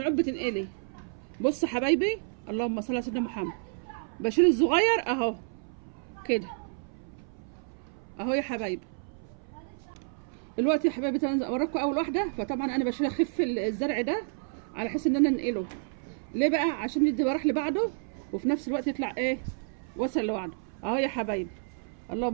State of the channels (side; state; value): left; silent; 58 dB below the other